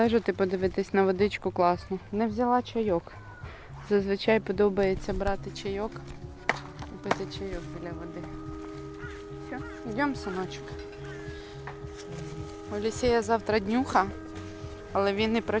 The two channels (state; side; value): identical; both; correlation 1.00